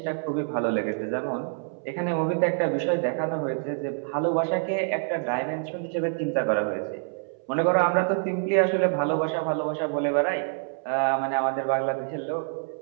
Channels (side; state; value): left; silent; 61 dB below the other